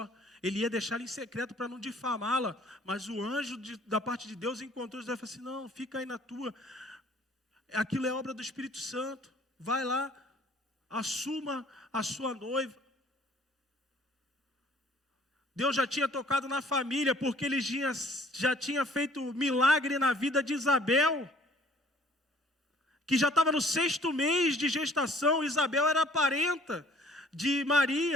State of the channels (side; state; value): both; normal; correlation 0.55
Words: ele ia deixá-la em secreto para não difamá-la, mas o anjo da parte de Deus encontrou José e falou assim, não, fica aí na tua, aquilo é obra do Espírito Santo, vai lá, assuma a sua noiva. Deus já tinha tocado na família, porque ele já tinha feito milagre na vida de Isabel, que já estava no 6º mês de gestação. Isabel era parenta de